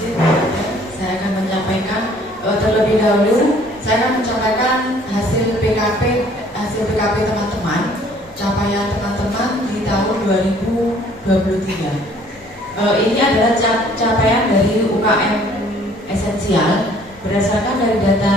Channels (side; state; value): both; normal; correlation 0.57